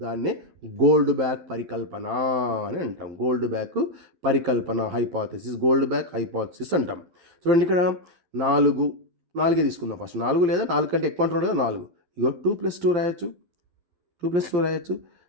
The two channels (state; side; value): late; left; 12 ms